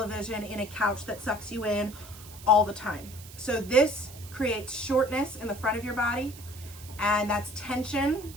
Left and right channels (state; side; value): noise; right; hiss, 17 dB below the sound